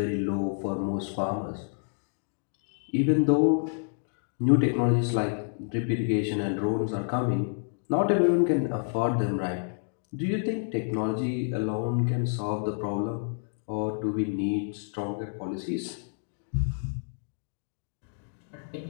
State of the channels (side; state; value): right; silent; digital silence